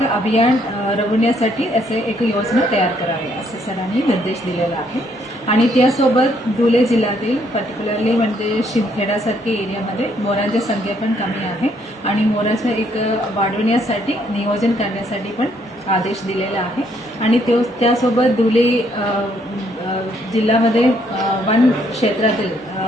अभियान राबवण्यासाठी असे एक योजना तयार करावी असे सरांनी निर्देश दिलेला आहे. आणि त्यासोबत धुळे जिल्ह्यातील पर्टिक्युलरली म्हणजे शिंदखेडासारख्या एरियामध्ये मोरांची संख्या पण कमी आहे आणि मोराचं एक वाढवण्यासाठी नियोजन करण्यासाठी पण आदेश दिलेला आहे. आणि त्यासोबत धुळे जिल्ह्यामध्ये वन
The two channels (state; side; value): normal; both; correlation 0.69